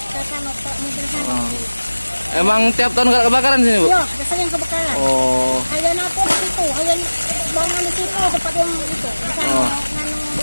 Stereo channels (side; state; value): both; inverted; correlation -1.00